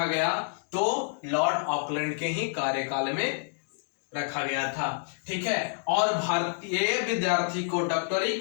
गया। तो लॉर्ड ऑकलैंड के ही कार्यकाल में रखा गया था। ठीक है, और भारतीय विद्यार्थी को डॉक्टरी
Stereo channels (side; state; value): right; silent; digital silence